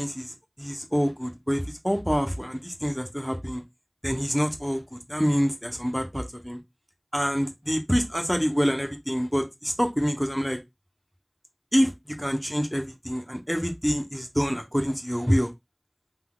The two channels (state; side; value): identical; both; correlation 1.00